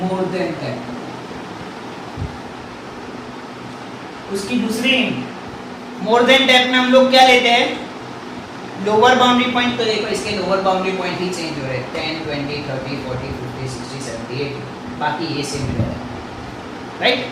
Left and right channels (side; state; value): both; identical; correlation 1.00